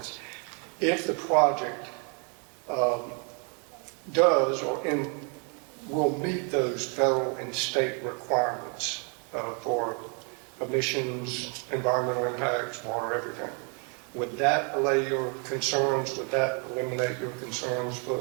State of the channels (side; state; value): left; quieter; 38.2 dB